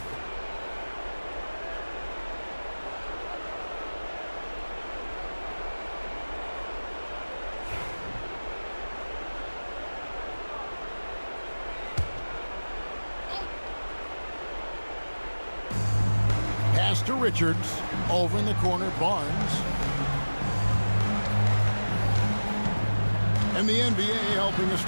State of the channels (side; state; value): both; inverted; correlation -1.00